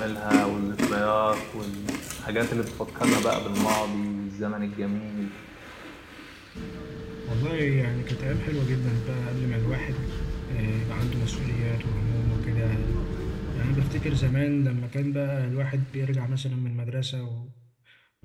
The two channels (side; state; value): both; identical; correlation 1.00